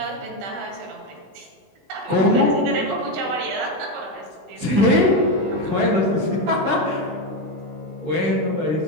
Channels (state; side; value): late; left; 20 ms